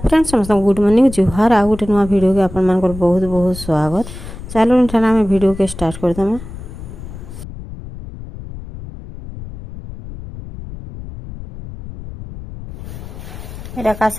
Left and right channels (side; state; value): left; noise; rumble, 12 dB below the sound